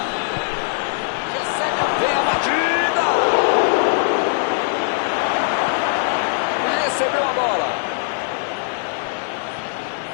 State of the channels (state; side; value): silent; right; digital silence